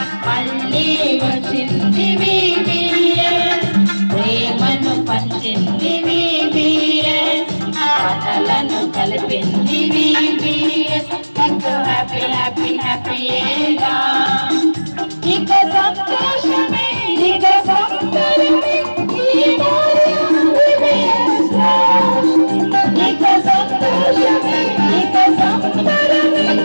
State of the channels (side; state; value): both; inverted; correlation -1.00